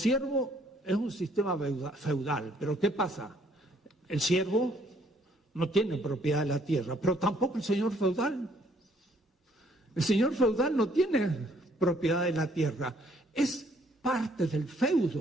es un sistema feudal. Pero ¿qué pasa? El siervo no tiene propiedad de la tierra, pero tampoco el señor feudal. El señor feudal no tiene propiedad de la tierra, es parte del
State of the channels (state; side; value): normal; both; correlation 0.65